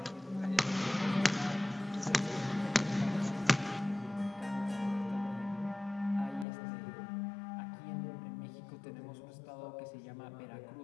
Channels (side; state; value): right; drops out; at 6.5 s